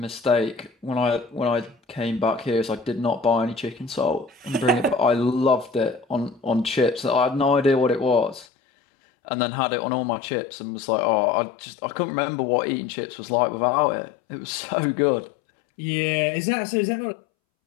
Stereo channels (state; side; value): drops out; right; at 8.5 s